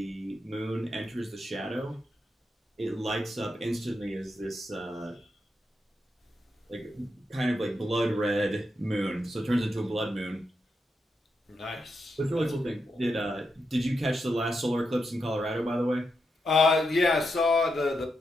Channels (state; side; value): normal; both; correlation 0.84